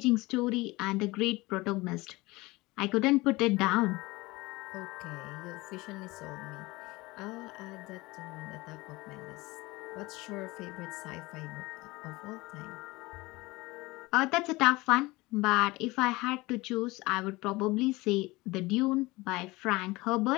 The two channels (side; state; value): right; quieter; 21.7 dB